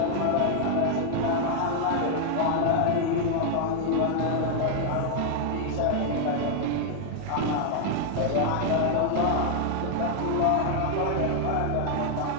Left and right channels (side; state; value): both; different; correlation 0.00